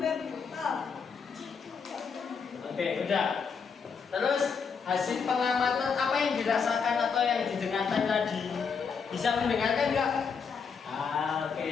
Oke, udah. Terus hasil pengamatan apa yang dirasakan atau yang didengarkan tadi? Bisa mendengarkan nggak? Oke.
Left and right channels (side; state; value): right; quieter; 5.9 dB